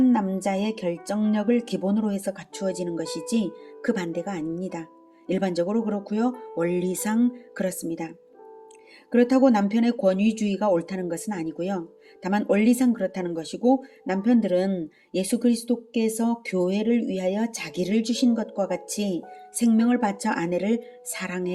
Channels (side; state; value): both; identical; correlation 1.00